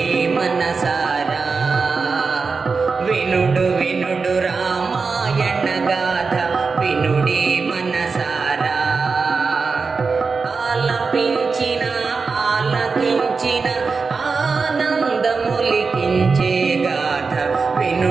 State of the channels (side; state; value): left; quieter; 4.7 dB